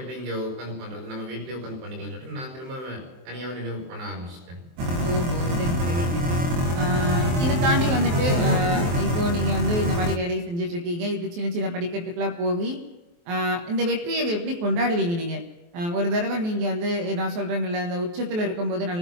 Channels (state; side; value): late; left; 23 ms